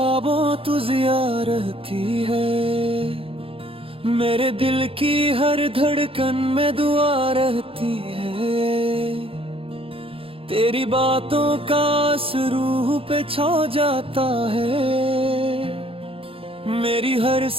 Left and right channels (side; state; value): left; late; 0.27 ms